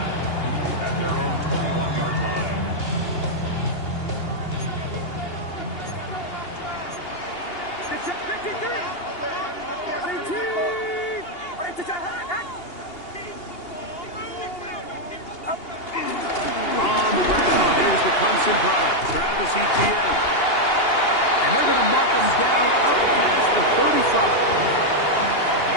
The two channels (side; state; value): right; late; 2.8 ms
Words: at their own 21-yard line. On the ground, here's the Clemson product, Travis Etienne. And they're going to mark him down up past the 35.